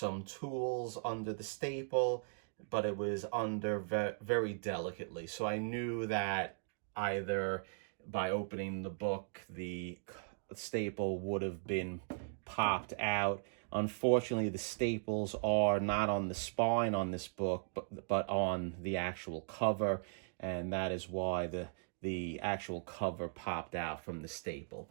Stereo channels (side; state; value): left; silent; digital silence